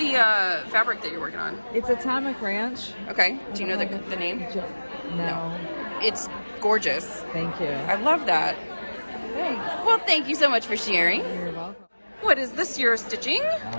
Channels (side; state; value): both; inverted; correlation -1.00